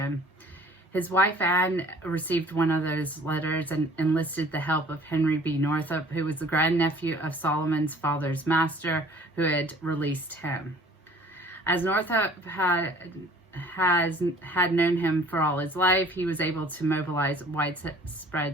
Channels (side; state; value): both; normal; correlation 0.52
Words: His wife Anne received one of those letters and enlisted the help of Henry B. Northup, who was the grandnephew of Solomon's father's master, who had released him. As Northup had known him for all his life, he was able to mobilize